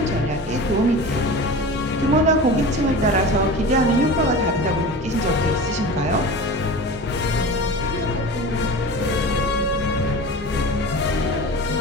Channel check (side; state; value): both; normal; correlation 0.33